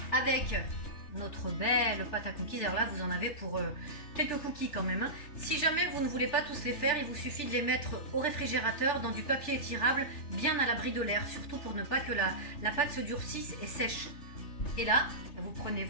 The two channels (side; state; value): right; late; 3.4 ms